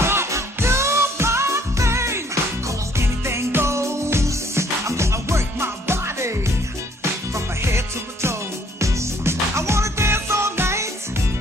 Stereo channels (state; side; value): normal; both; correlation 0.62